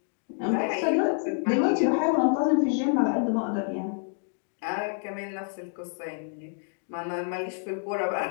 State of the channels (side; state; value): right; silent; digital silence